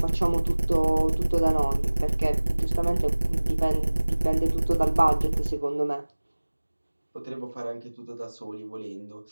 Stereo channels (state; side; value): inverted; both; correlation -1.00